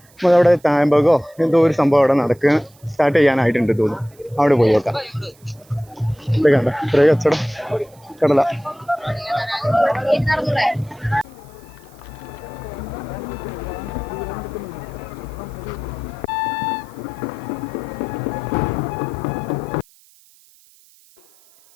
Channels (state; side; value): noise; right; hiss, 29 dB below the sound